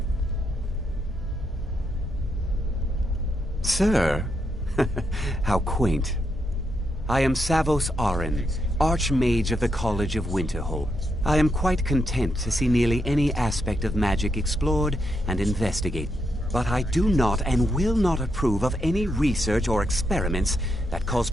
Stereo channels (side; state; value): both; normal; correlation 0.81